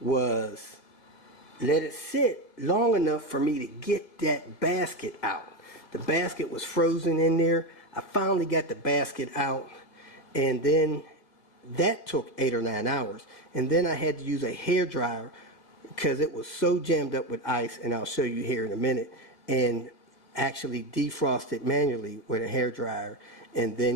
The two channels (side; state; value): right; late; 1.9 ms